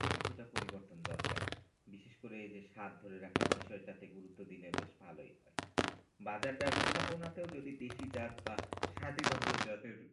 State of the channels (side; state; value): both; identical; correlation 1.00